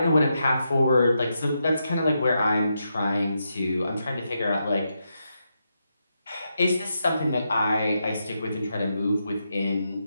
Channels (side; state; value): both; inverted; correlation -0.84